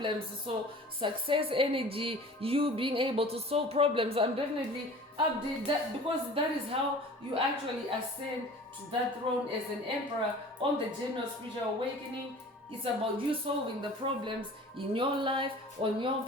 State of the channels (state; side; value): normal; both; correlation 0.43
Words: So success energy, you being able to solve problems. I'm definitely update that, because that is how you actually ascend to that throne as an emperor on the journey of spiritual awakening. It's about you solving the problems in your life, on your